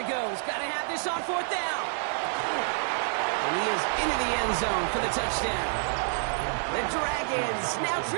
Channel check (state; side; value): silent; left; 59 dB below the other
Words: goes. Got to have this on 4th down. And he is into the end zone for the touchdown. The Dragons now